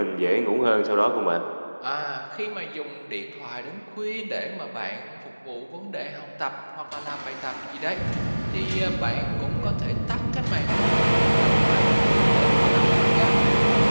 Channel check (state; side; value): inverted; both; correlation -1.00